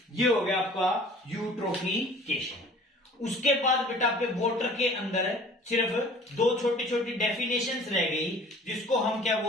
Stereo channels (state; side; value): normal; both; correlation 0.48